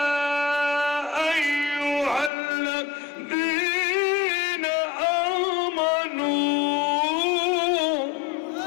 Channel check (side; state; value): right; drops out; at 2.3 s